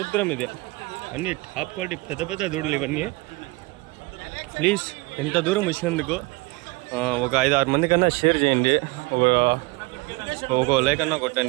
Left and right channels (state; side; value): quieter; left; 24.6 dB